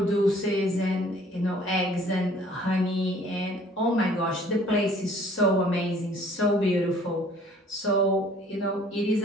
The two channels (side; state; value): both; normal; correlation 0.55